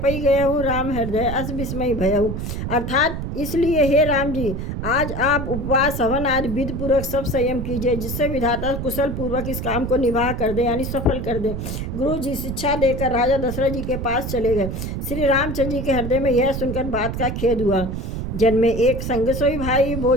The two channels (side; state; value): right; noise; rumble, 5 dB below the sound